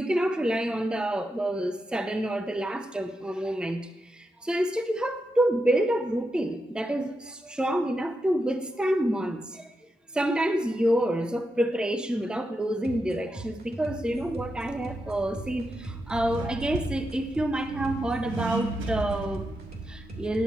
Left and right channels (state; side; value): normal; both; correlation 0.86